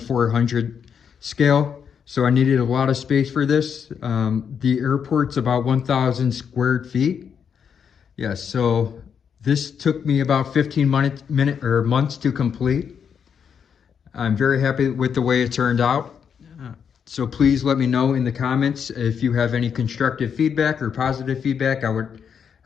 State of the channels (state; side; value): quieter; right; 7.3 dB